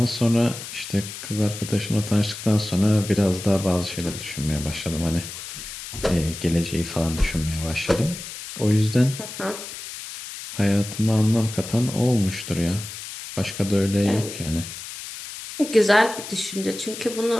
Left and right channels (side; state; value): left; noise; hiss, 10 dB below the sound